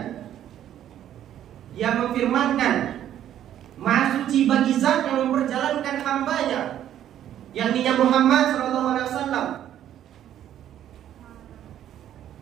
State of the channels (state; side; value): quieter; left; 11.1 dB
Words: Dia memfirmankan maha suci bagi zat yang memperjalankan hambanya, yakni Muhammad SAW,